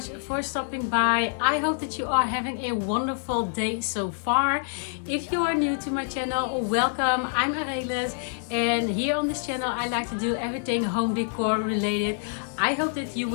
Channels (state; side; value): silent; right; digital silence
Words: for stopping by. I hope that you are having a wonderful day so far. If you are new to my channel, welcome. I'm Arelis, and here on this channel I like to do everything home decor related. I hope that you